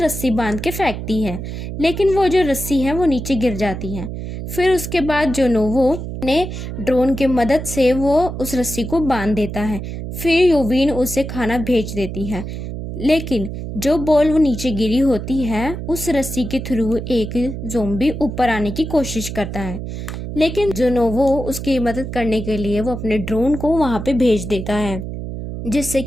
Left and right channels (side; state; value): right; noise; hum, 7 dB below the sound